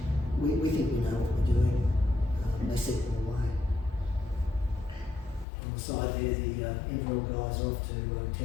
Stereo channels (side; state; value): right; drops out; at 5.5 s